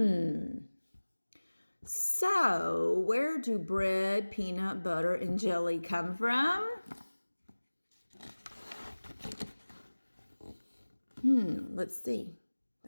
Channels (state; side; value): inverted; both; correlation -1.00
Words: So, where do bread, peanut butter, and jelly come from? Let's see.